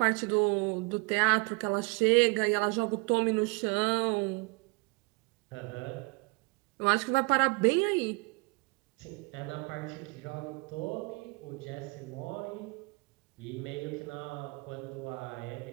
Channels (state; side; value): quieter; left; 29.3 dB